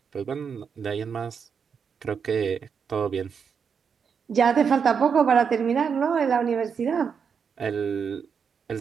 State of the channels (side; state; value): left; quieter; 6.5 dB